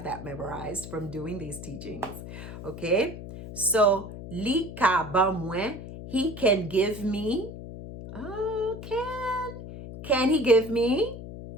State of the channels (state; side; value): noise; left; hum, 11 dB below the sound